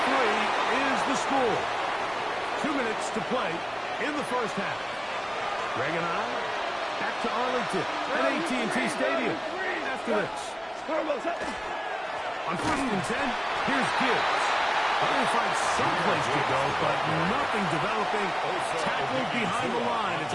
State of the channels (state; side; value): identical; both; correlation 1.00